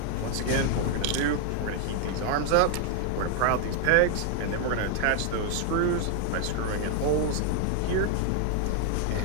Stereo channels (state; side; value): different; both; correlation 0.00